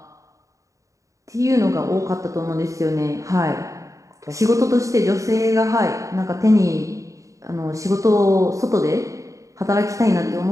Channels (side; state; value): left; late; 0.16 ms